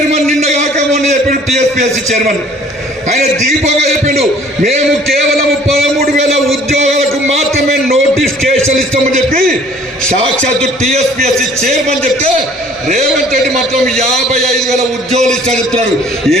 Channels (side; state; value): both; normal; correlation 0.55